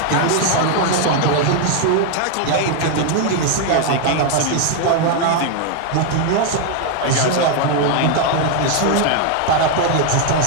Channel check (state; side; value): different; both; correlation 0.00